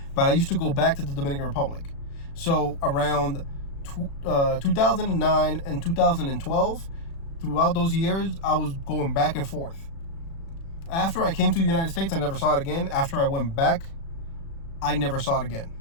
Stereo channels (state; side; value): late; right; 36 ms